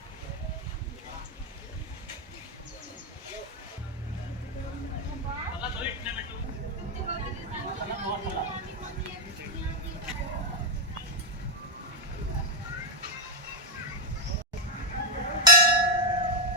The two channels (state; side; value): normal; both; correlation 0.02